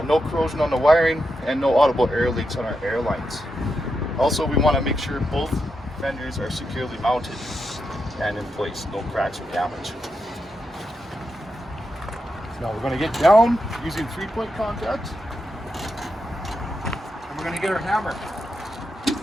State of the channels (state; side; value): normal; both; correlation 0.85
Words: No corrosion on the wiring and no audible air leaks on our air lines. Also, we want to make sure both fenders are securely mounted and in place, no cracks or damage. Now we're going to get down using 3-point contact, and we're going to get our hammer.